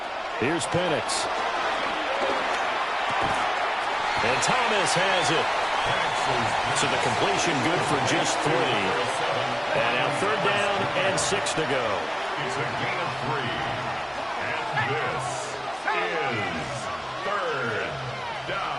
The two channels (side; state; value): both; identical; correlation 1.00